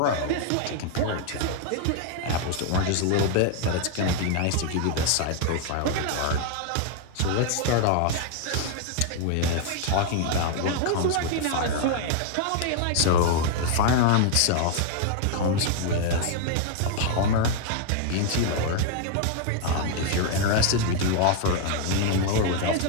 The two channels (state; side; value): different; both; correlation 0.00